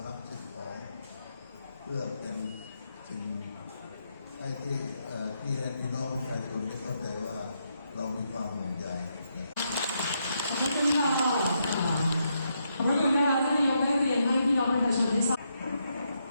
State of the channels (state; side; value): inverted; both; correlation -0.80